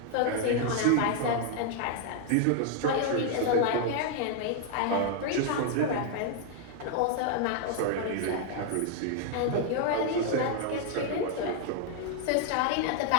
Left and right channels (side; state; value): both; different; correlation 0.00